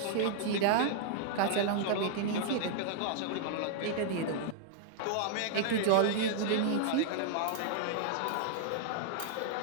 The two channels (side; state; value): both; different; correlation -0.01